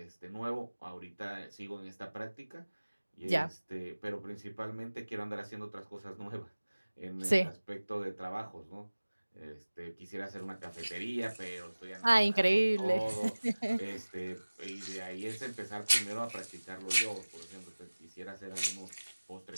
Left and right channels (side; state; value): both; inverted; correlation -1.00